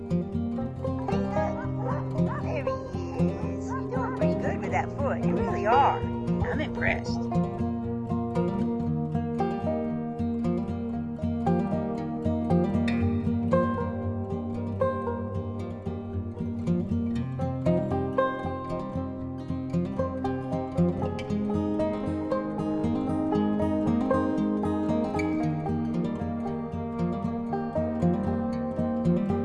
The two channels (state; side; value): identical; both; correlation 1.00